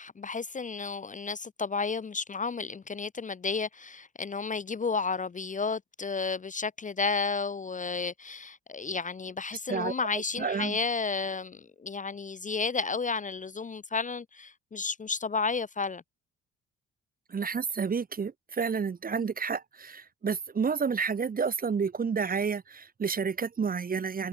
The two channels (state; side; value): normal; both; correlation 0.16